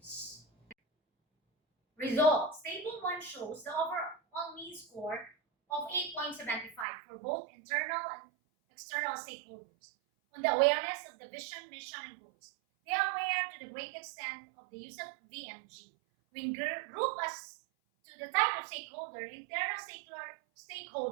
Results. Table 1 shows the overall mean score of 8.75 for both internal and external stakeholders on the awareness of the vision, mission, and goals. They are aware to the great extent of the use of VMG. We group as to the type of stakeholder, internal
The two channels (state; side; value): drops out; left; at 6.9 s